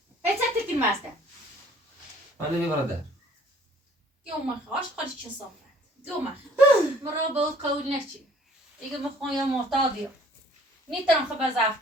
هیچ تکن ماسته ولی بیا برادر يوم خاش خارج چه صافه يوم مرا بود قول نشی دیگه مخوام یا معتادیم نیترم خب ضعف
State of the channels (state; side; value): normal; both; correlation 0.56